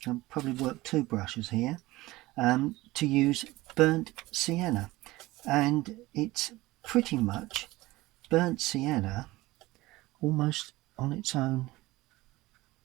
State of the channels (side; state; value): left; quieter; 19.2 dB